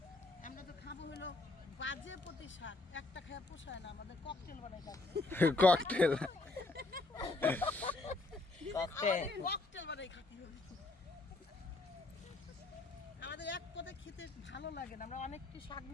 আমরা তো খাবো হলো বাজে প্রতি শাক একটা খেয়ে পোষায় না আমাদের ককটেল বানাই খাবো ককটেল ককটেল বানাই খাতি হবে আমাদের এক পদে খেতে ভালো লাগে না আমরা অনেক কি শাক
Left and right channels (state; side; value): quieter; right; 3.2 dB